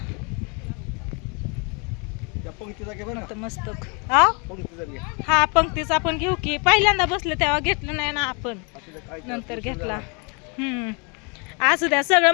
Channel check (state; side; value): quieter; right; 33.6 dB